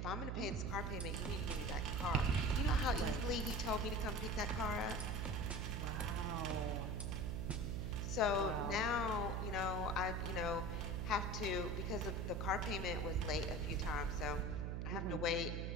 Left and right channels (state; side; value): noise; right; hum, 1 dB below the sound